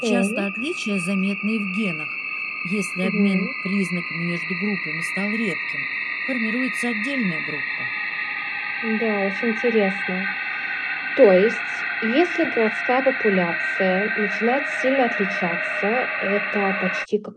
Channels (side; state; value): both; identical; correlation 1.00